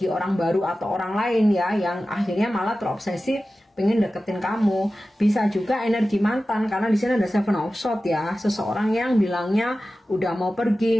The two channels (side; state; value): both; normal; correlation 0.95